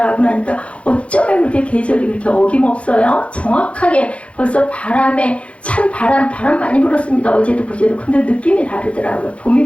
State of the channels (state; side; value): late; right; 0.062 ms